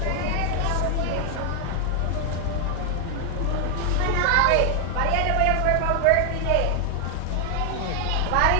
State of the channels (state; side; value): different; both; correlation 0.00